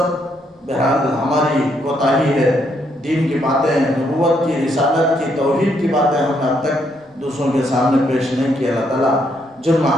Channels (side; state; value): both; normal; correlation 0.74